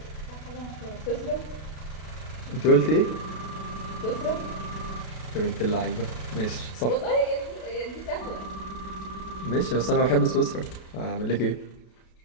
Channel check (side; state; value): right; late; 32 ms